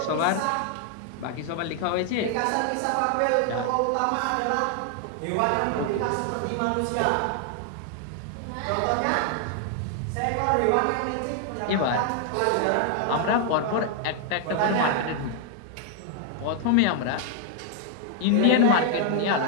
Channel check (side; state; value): both; different; correlation 0.00